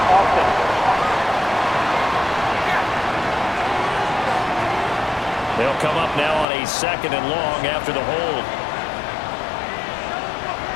They'll come up now on a 2nd and long after the hold.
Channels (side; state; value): right; drops out; at 6.5 s